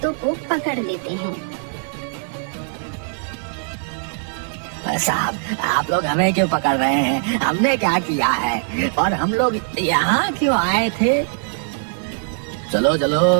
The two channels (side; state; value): left; silent; digital silence